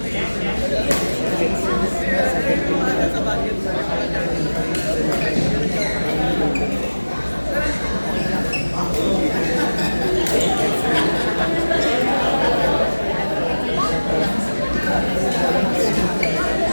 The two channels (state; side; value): inverted; both; correlation -1.00